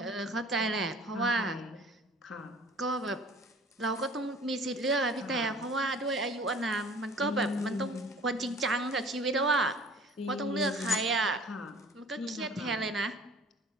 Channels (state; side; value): normal; both; correlation 0.48